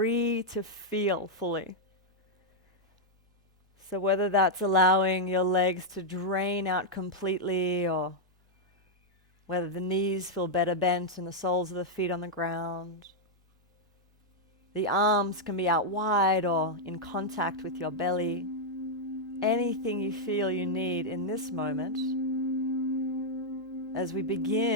to feel fully. So whether that's allowing your legs to drain out completely, or whether the knees feel better bent and the soles of the feet on the ground. The arms can be out wide or in contact with your belly. Anything you feel you need in this moment as we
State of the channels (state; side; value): normal; both; correlation -0.03